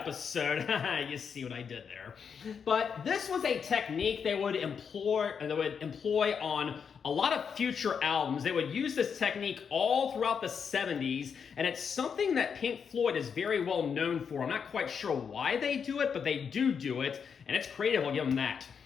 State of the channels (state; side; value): quieter; right; 6.7 dB